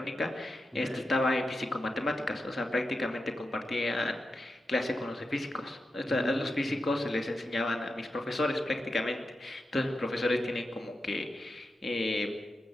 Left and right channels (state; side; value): normal; both; correlation 0.89